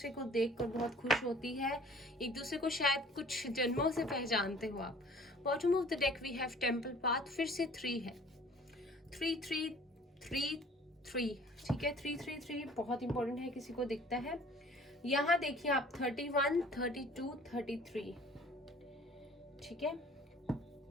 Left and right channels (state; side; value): normal; both; correlation 0.51